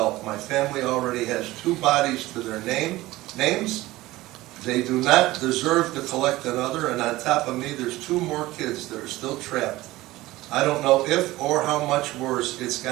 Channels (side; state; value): left; quieter; 18.0 dB